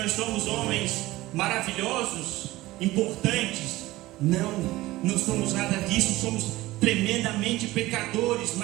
somos homens maravilhosos, importantes. Não somos nada disso, somos tremendamente pecadores,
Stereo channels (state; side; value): quieter; left; 18.0 dB